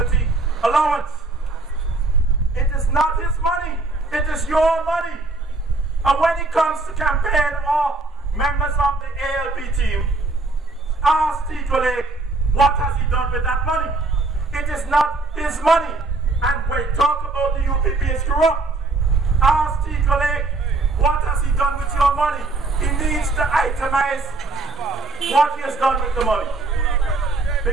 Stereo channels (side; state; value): left; quieter; 3.5 dB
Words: allowance. It is not his money. It is your money. And when it comes to campaign or members of the ALP team, ask Tindale what has he done with that money. It is not his money. And when talk about the UPP is corrupt, ask Tindale what has he done with your money. He needs to itemize what he has done with the money.